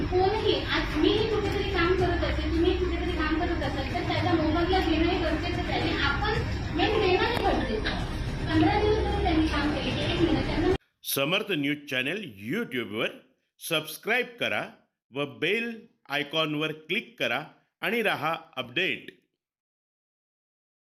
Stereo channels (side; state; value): both; identical; correlation 1.00